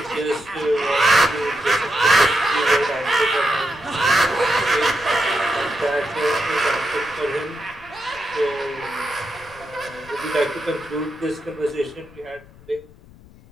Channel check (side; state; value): left; noise; rumble, 23 dB below the sound